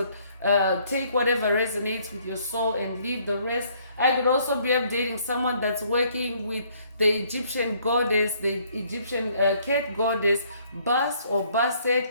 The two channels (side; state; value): both; inverted; correlation -0.64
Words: take whatever resonates with your soul and leave the rest. I could also be updating someone that's working with the Egyptian goddess, the Egyptian cat goddess, Bast or Bastet.